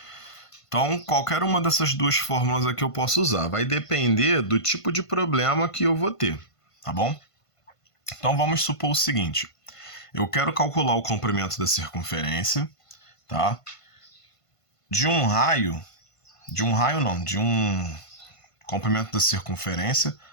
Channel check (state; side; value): late; right; 1.5 ms